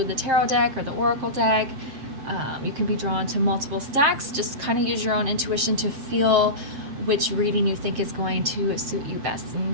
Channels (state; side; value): late; left; 7.6 ms